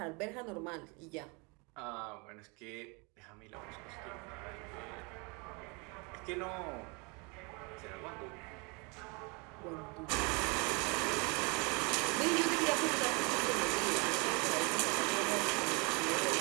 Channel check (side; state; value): left; quieter; 30.6 dB